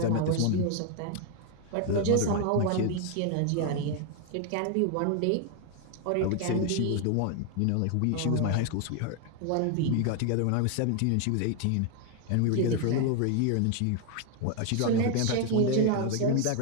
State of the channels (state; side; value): different; both; correlation 0.01